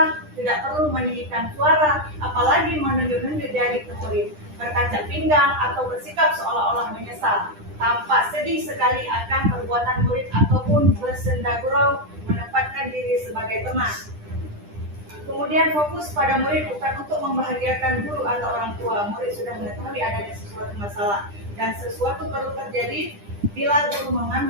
tidak perlu meninggikan suara, apalagi menunjuk-nunjuk jari ke murid, berkacak pinggang atau bersikap seolah-olah menyesal. Tampak sedih sekali akan perbuatan murid ataupun bersenda gurau menempatkan diri sebagai teman. Kemudian fokus pada murid bukan untuk membahagiakan guru atau orang tua. Murid sudah mengetahui adanya sesuatu masalah dan sesuatu perlu terjadi. Bila guru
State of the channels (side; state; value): left; late; 10 ms